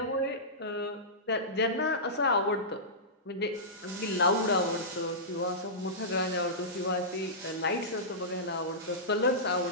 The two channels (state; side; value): normal; both; correlation -0.17